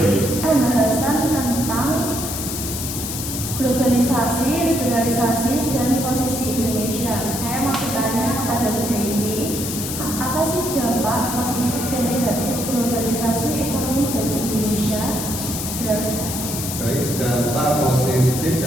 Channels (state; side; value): noise; left; hiss, 5 dB below the sound